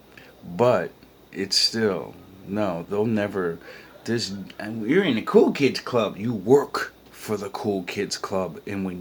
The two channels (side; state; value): both; identical; correlation 1.00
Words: But it's still no, they'll never you're in the cool kids club. You work for the cool kids club, and